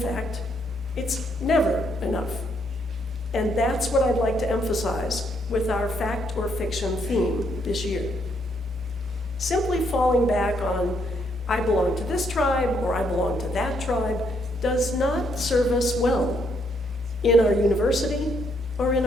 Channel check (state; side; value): normal; both; correlation 0.73